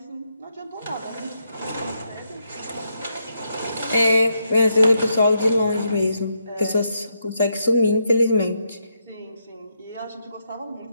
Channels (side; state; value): both; inverted; correlation -0.80